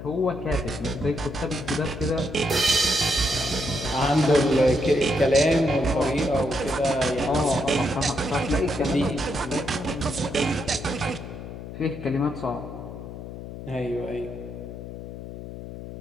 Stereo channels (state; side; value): noise; left; hum, 10 dB below the sound